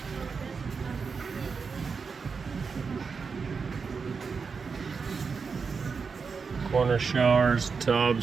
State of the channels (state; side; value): quieter; left; 5.3 dB